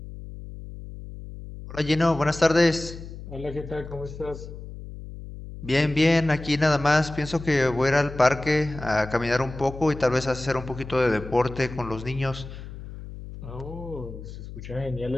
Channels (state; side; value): noise; left; hum, 12 dB below the sound